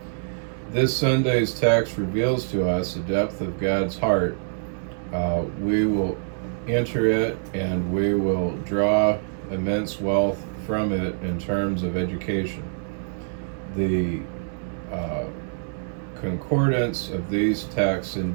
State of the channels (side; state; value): left; silent; digital silence